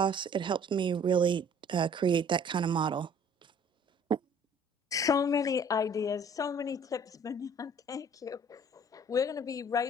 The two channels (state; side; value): normal; both; correlation 0.54